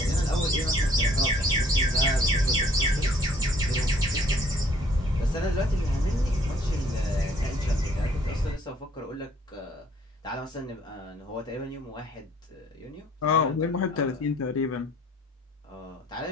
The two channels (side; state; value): both; normal; correlation 0.59